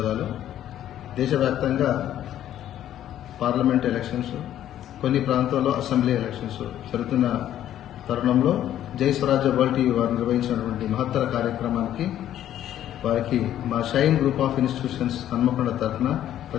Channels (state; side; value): quieter; right; 11.6 dB